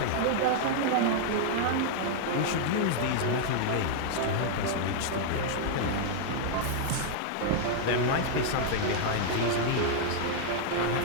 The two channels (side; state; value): both; different; correlation -0.01